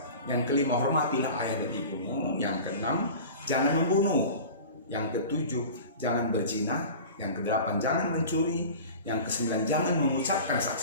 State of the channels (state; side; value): inverted; both; correlation -0.37